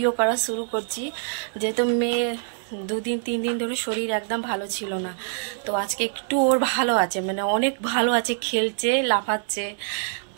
করা শুরু করছি। যেহেতু মেয়ে 2-3 দিন ধরে শরীর একদম ভালো ছিল না, তো আজকে একটু ওর ভালো আছে, মানে অনেক ভালো আছে, খেলছে, লাফাচ্ছে।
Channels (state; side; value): silent; left; digital silence